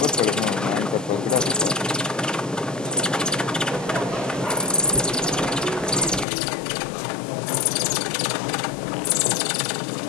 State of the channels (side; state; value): right; drops out; at 6.2 s